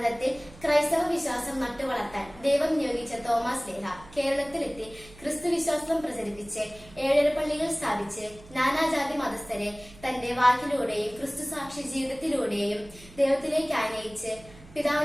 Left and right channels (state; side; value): noise; right; hum, 21 dB below the sound